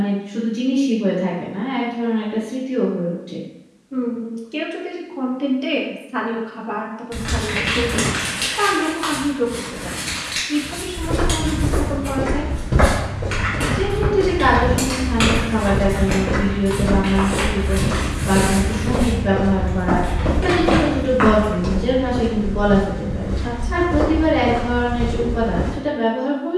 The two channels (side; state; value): both; identical; correlation 1.00